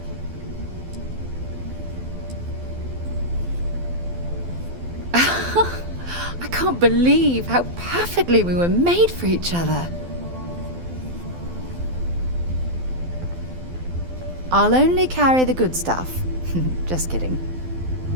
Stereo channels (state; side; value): late; left; 12 ms